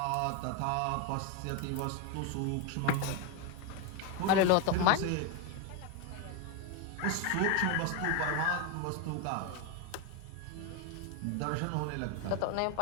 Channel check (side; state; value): both; different; correlation 0.01